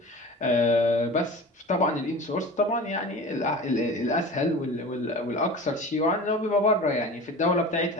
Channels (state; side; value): normal; both; correlation 0.36